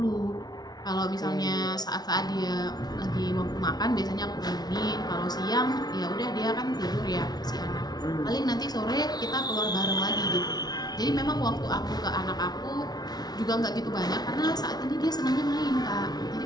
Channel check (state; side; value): late; right; 0.19 ms